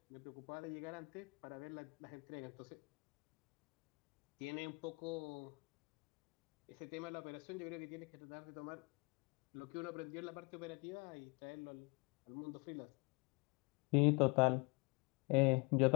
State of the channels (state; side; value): quieter; right; 29.8 dB